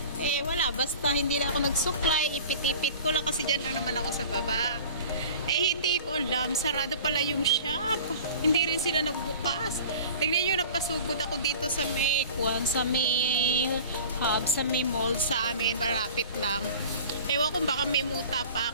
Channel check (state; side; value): inverted; both; correlation -0.41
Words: Eh wala, basta hindi na ako nagsuklay. Ipit-ipit ko lang kasi dyan lang naman ako sa baba. Eh hindi ko alam, sarado pala yung shop. Hindi rin sila nagbukas. Tingnan nyo, napasugod ako dito sa may kuwan, sa may hub, sa may mall sa amin. Malapit lang. Ewan kung baka may muta pa